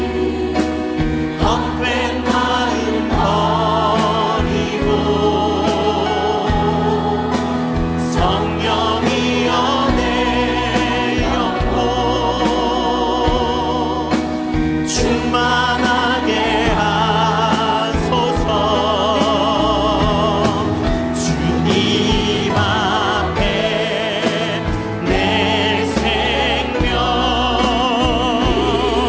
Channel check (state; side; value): identical; both; correlation 1.00